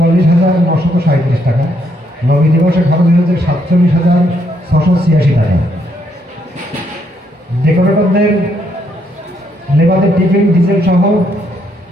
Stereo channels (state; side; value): normal; both; correlation 0.74